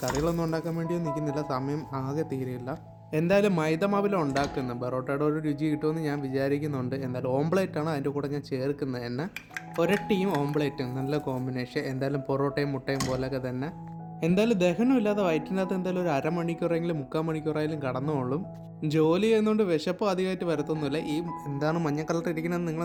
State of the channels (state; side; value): identical; both; correlation 1.00